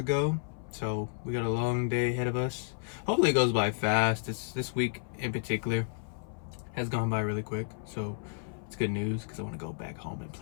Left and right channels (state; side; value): silent; right; 57 dB below the other